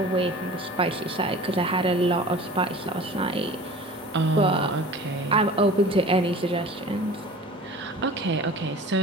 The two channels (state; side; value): normal; both; correlation 0.41